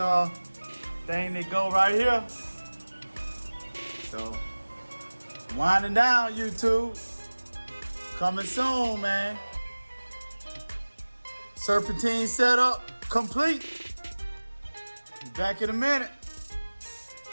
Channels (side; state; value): both; inverted; correlation -1.00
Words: thing that go right here. So, winding down, YouTube. Coming soon, man. Serpentine setup complete. Be back in a minute.